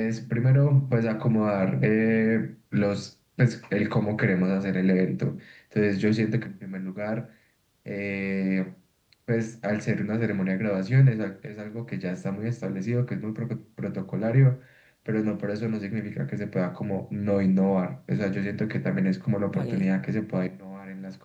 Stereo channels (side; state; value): both; identical; correlation 1.00